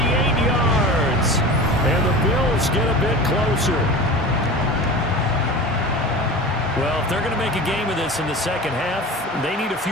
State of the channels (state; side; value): normal; both; correlation 0.33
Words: yards. And the Bills get a bit closer. Well, if they're going to make a game of this in the second half, they need a